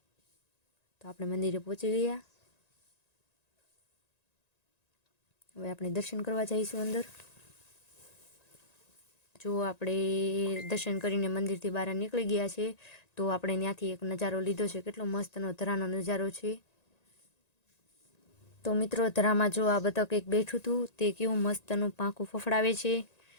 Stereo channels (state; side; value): late; right; 1.9 ms